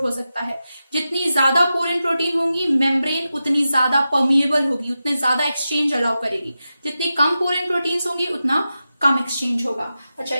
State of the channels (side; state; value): both; inverted; correlation -0.92